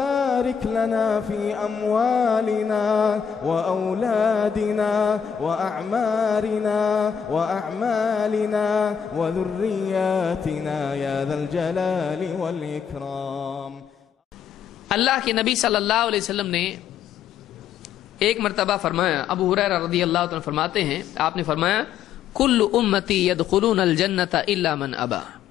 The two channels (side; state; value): right; quieter; 7.9 dB